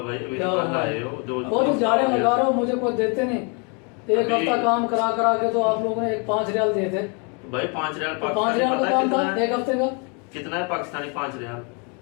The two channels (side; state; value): right; quieter; 34.9 dB